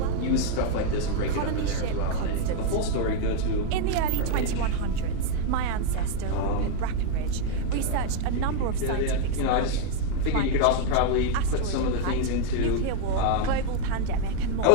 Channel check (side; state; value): both; different; correlation 0.00